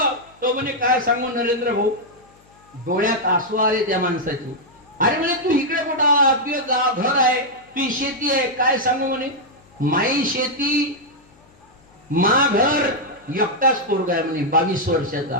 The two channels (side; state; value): left; noise; hum, 30 dB below the sound